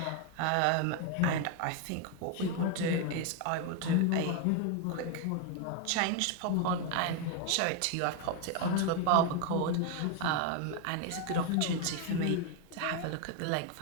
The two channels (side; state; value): both; different; correlation 0.01